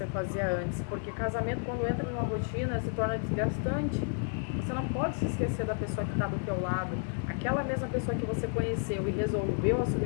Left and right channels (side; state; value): right; silent; 57 dB below the other